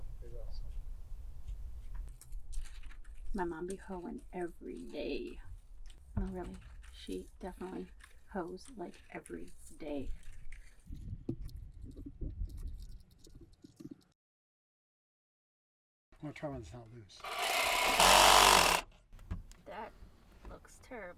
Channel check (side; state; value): both; identical; correlation 1.00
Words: to figure out something. My mom be hoeing every day. No, really. She definitely hoes like every day. I'm gonna try when it's not loose. That looks